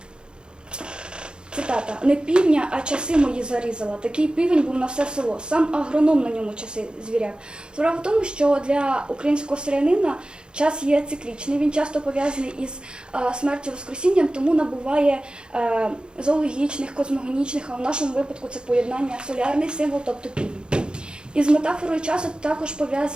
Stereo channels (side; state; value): left; late; 0.050 ms